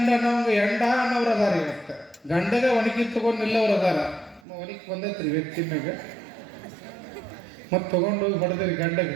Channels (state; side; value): drops out; left; at 4.4 s